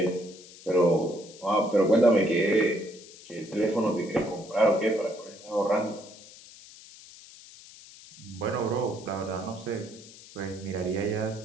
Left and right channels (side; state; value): left; noise; hiss, 19 dB below the sound